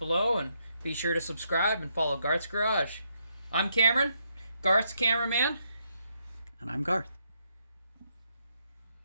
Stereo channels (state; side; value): inverted; both; correlation -0.78